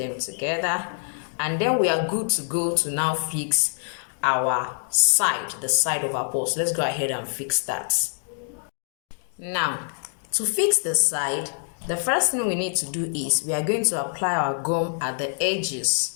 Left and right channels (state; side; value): silent; right; digital silence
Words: together, and then we are good to go to now fix our side, the side of our purse. Let's go ahead and fix that. Now, to fix the side, the first thing we need to do is we are going to apply our gum at the edges.